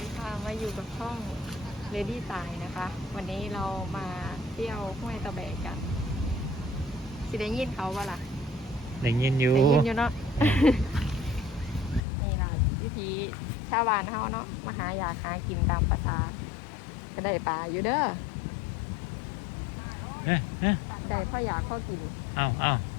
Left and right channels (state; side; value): drops out; right; at 12.0 s